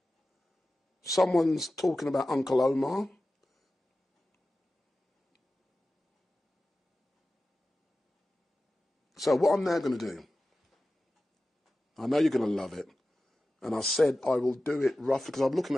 someone's talking about Uncle Omar. So what I'm now going to do, I know you're going to love it, and I said I will do it roughly, because I'm looking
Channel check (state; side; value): normal; both; correlation 0.94